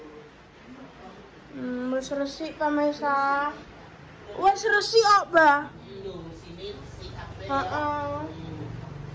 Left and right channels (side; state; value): both; identical; correlation 1.00